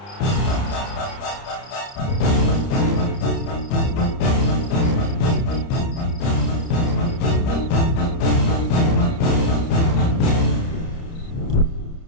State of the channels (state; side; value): late; right; 30 ms